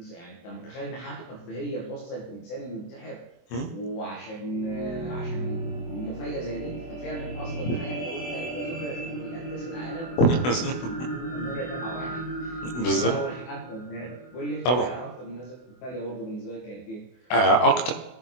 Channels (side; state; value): right; late; 24 ms